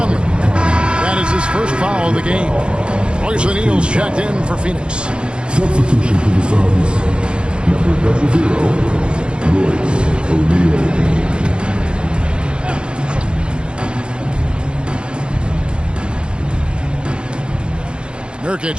That is his first foul of the game. Royce O'Neal's checked in for Phoenix. Substitution for the Suns. Number 00, Royce O'Neal. Nurkic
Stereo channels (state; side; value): late; left; 0.054 ms